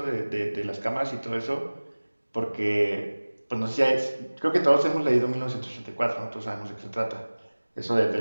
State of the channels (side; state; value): both; inverted; correlation -1.00